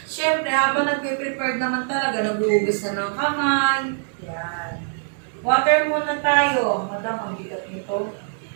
syempre, habang nagpe-prepare naman talaga, naghuhugas na ng kamay. Yan. Water muna tayo. Madam, ang bigat nito.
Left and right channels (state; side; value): silent; left; digital silence